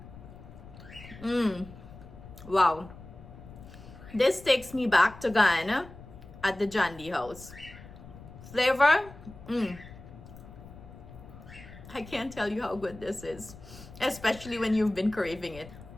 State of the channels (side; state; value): left; noise; rumble, 17 dB below the sound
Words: Wow. This takes me back to Guyana at the Jandy house. Flavor, I can't tell you how good this is, especially when you've been craving it.